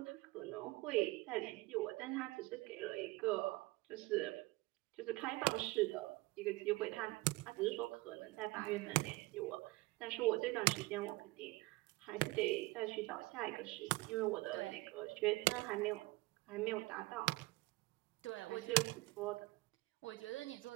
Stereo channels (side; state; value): left; quieter; 21.6 dB